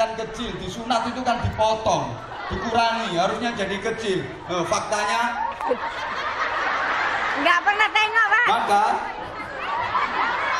kecil, disunat itu kan dipotong, dikurangi, harusnya jadi kecil. Faktanya nggak pernah tengok, Pak. Maka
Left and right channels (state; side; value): identical; both; correlation 1.00